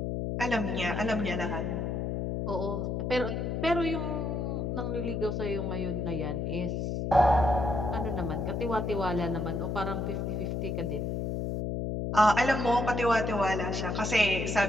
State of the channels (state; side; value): noise; left; hum, 1 dB below the sound